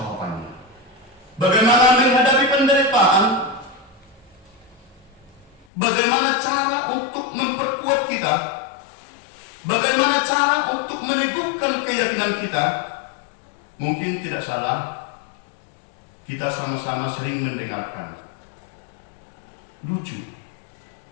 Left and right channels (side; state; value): right; drops out; at 5.7 s